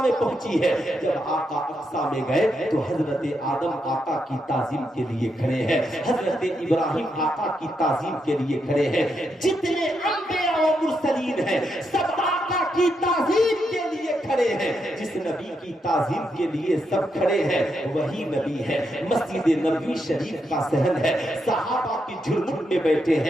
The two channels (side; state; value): both; normal; correlation 0.82